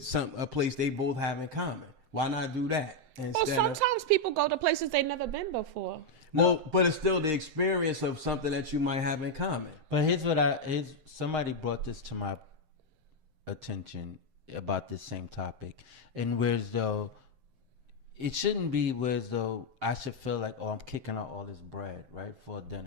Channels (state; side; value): late; left; 7.7 ms